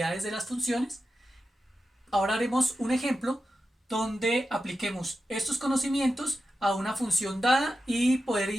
de las funciones. Ahora haremos un ejemplo donde apliquemos estos conocimientos a una función dada y poder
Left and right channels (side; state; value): both; normal; correlation 0.90